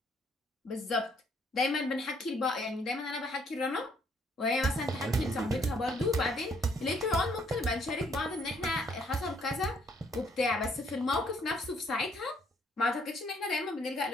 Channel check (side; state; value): both; normal; correlation 0.67